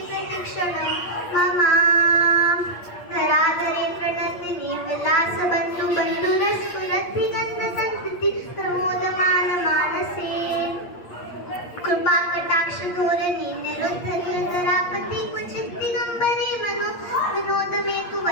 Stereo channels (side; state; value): right; late; 8.5 ms